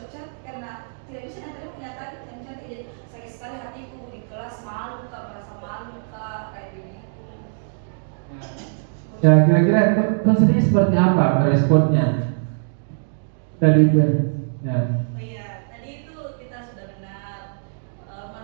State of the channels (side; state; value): left; silent; digital silence